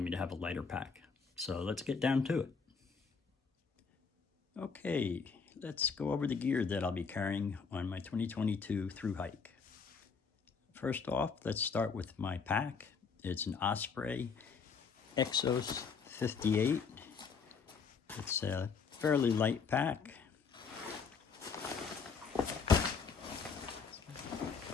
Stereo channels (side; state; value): right; quieter; 5.5 dB